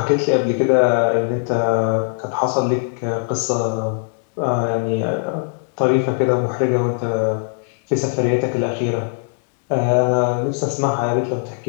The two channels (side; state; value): right; silent; digital silence